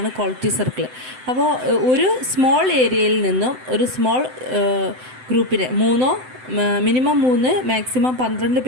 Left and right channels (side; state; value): left; late; 7.8 ms